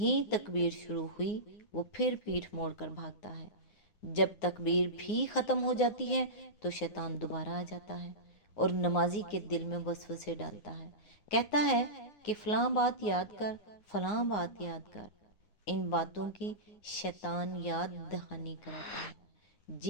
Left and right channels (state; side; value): late; right; 9.6 ms